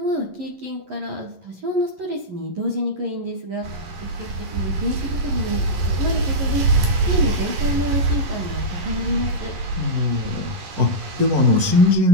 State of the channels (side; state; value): left; late; 11 ms